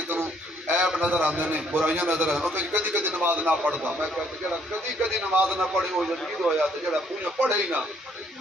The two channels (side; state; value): both; normal; correlation 0.66